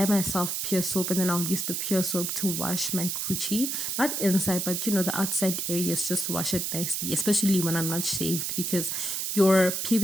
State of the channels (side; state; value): right; noise; hiss, 1 dB below the sound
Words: myself pure soap, and then I'll use the pure soap to wash my coochie, not inside, but the outside areas, just wash it nicely, especially when I'm not shaved, because your